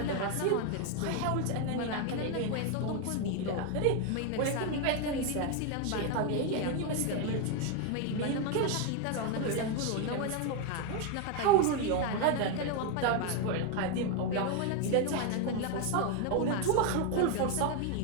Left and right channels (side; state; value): both; different; correlation 0.01